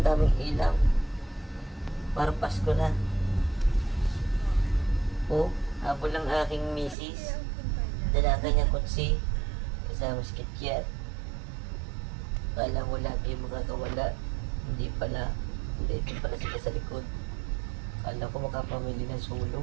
daming ilaw. Parang Pasko na. Oh, habol lang aking misis. Dala kanyang kutsi. Kasama si Kikyat. Kala mo lagi makakawala. Hindi pala. Hindi, ito pala sila sa likod. Kala ko makapamili ng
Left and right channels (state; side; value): drops out; left; at 7.0 s